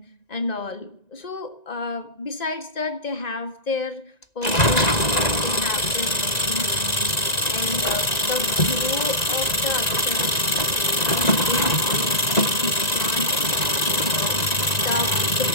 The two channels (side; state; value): right; late; 1.9 ms